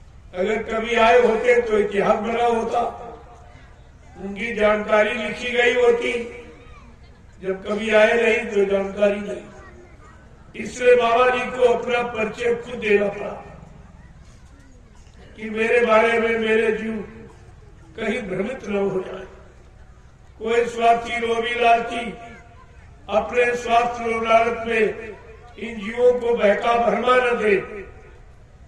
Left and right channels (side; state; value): both; identical; correlation 1.00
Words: अगर कभी आए होते तो इतिहास बना होता, उनकी जानकारी लिखी गई होती। जब कभी आए नहीं तो जानकारी नहीं। इसलिए बाबा जी को अपना परिचय खुद देना पड़ा कि मेरे बारे में मेरे जीव कहीं भ्रमित न हो जाए। कोई स्वार्थी लोभी लालची अपने स्वार्थ लालच में इन जीवों को बहका भरमा न दे